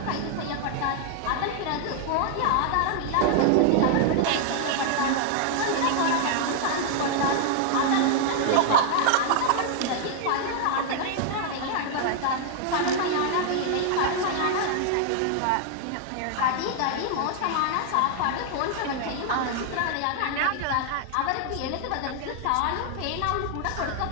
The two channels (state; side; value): different; both; correlation 0.00